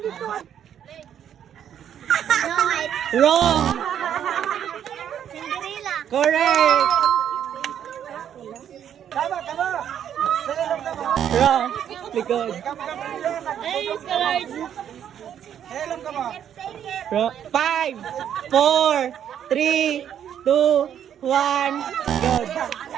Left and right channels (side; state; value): left; quieter; 9.5 dB